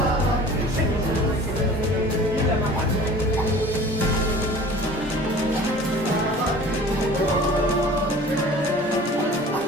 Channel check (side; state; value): both; normal; correlation 0.44